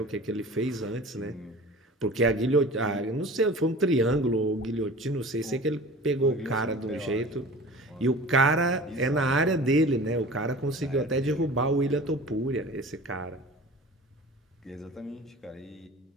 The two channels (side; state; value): both; normal; correlation 0.40